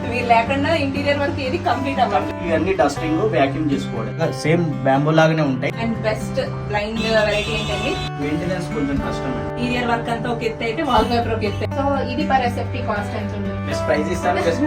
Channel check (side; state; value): both; identical; correlation 1.00